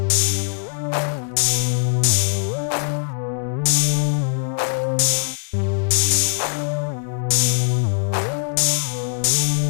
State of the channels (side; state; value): right; silent; digital silence